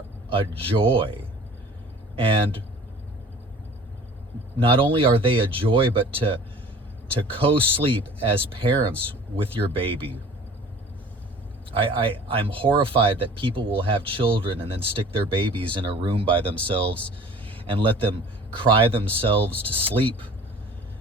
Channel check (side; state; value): both; normal; correlation 0.46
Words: a joy. And not only are they a joy, but to co-sleep as parents with your baby. I'm horrified that people will have children and then stick their babies in a room by themselves and let them cry themselves to sleep.